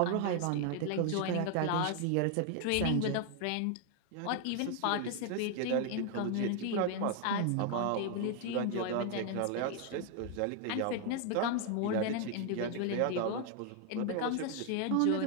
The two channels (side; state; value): both; different; correlation 0.00